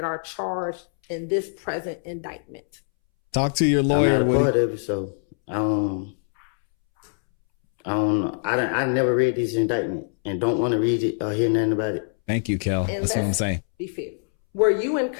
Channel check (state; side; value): silent; right; 63 dB below the other